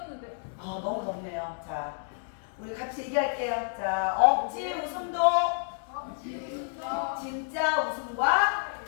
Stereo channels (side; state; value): right; silent; digital silence